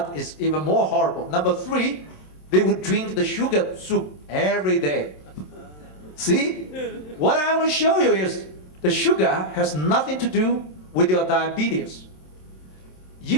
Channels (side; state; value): right; late; 27 ms